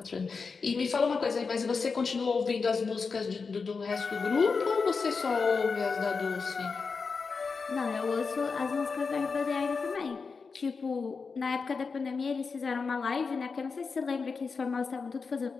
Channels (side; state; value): right; quieter; 4.9 dB